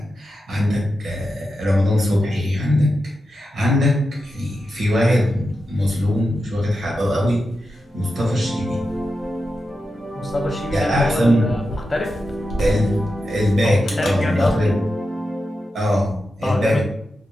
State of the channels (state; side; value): normal; both; correlation 0.89